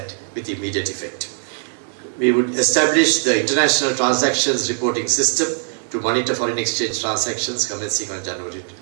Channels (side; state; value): left; silent; 65 dB below the other